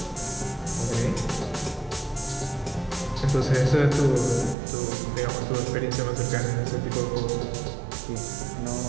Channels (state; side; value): drops out; left; at 4.5 s